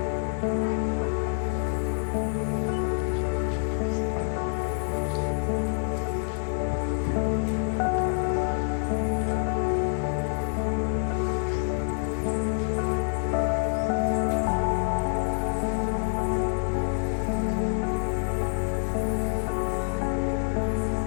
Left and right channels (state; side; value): silent; right; 56 dB below the other